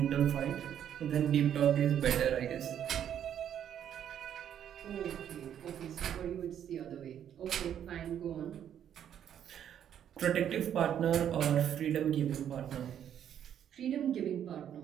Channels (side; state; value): left; quieter; 9.6 dB